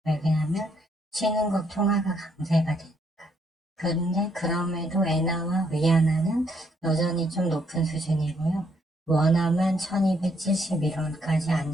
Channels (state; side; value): normal; both; correlation 0.72